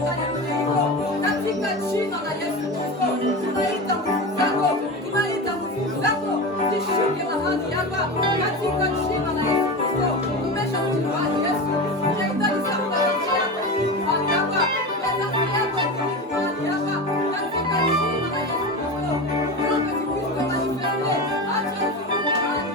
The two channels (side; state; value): both; normal; correlation 0.25